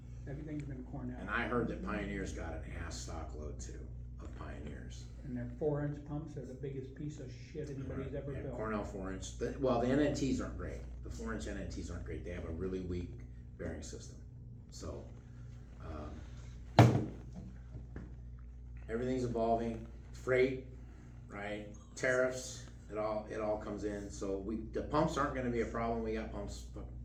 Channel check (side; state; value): both; identical; correlation 1.00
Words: Everything's been Cornell. And I heard that Pioneer's got an ass stock load too of Pioneers. And their 4-inch pumps are the biggest piece of shit anybody's ever Yeah, built. Cornell 4-inch. Well, the NNTs aren't great. The 4-inch NNTs aren't great. They have a really weak bearing system. So, everything's evolving. Freight, right? Tariffs. It all comes in. So the pumps aren't going to be a problem. We got pumps